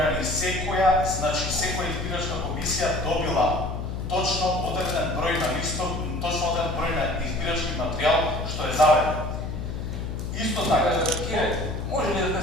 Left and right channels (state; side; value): noise; left; hum, 5 dB below the sound